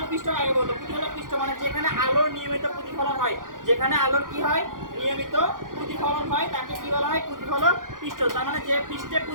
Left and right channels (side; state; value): left; late; 0.90 ms